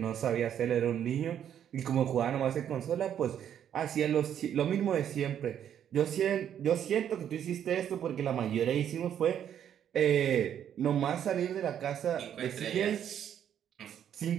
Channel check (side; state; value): left; quieter; 9.5 dB